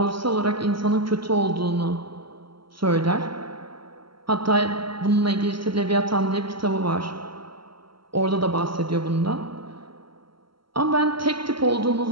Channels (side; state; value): left; late; 0.74 ms